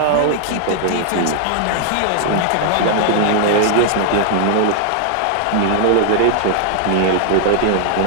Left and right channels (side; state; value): both; different; correlation 0.00